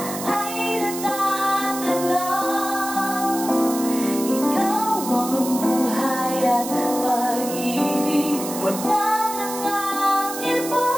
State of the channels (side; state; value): right; noise; hiss, 9 dB below the sound